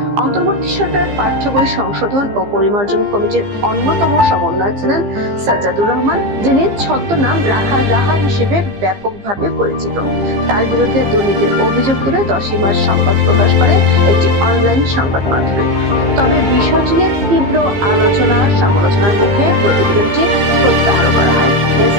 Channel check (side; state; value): left; late; 15 ms